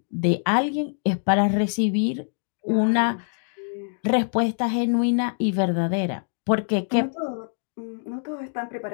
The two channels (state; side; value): silent; right; digital silence